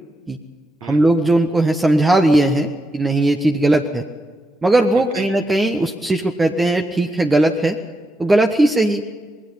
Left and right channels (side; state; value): both; normal; correlation 0.86